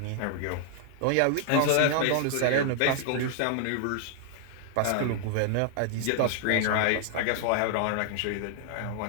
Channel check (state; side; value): different; both; correlation 0.00